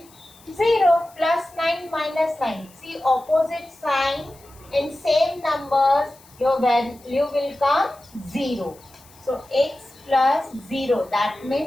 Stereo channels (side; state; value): left; noise; hiss, 26 dB below the sound